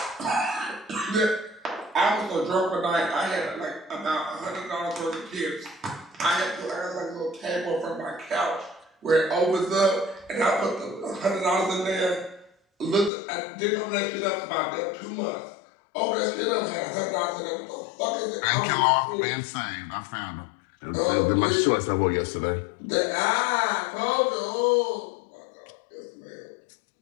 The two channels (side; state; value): right; drops out; at 13.1 s